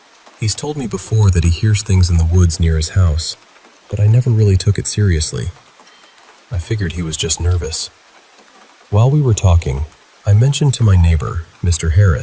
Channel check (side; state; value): both; identical; correlation 1.00